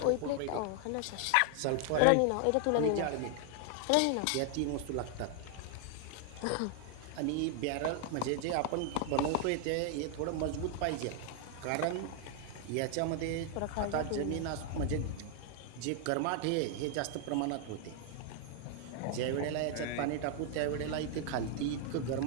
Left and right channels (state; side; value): different; both; correlation 0.00